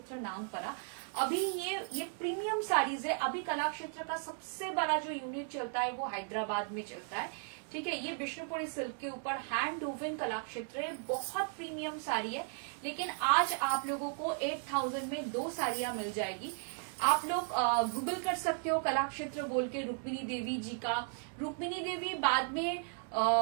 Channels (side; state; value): left; silent; 54 dB below the other